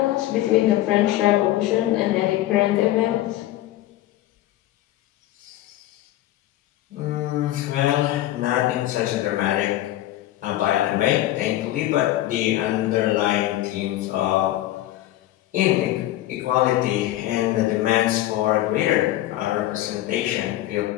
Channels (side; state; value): right; quieter; 14.8 dB